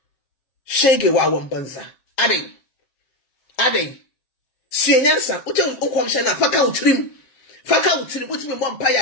shege wa wambanza ade sienyansa uche unkwamsha na faka utrim utimi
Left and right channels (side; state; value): right; late; 7.5 ms